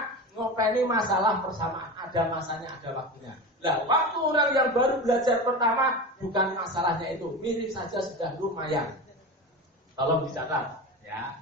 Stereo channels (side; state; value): both; normal; correlation 0.26